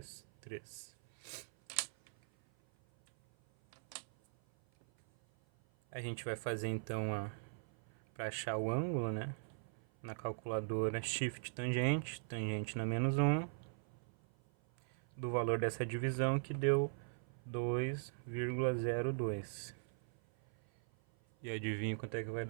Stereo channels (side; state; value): left; silent; 51 dB below the other